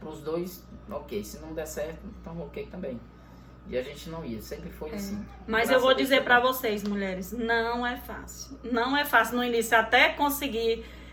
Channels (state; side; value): identical; both; correlation 1.00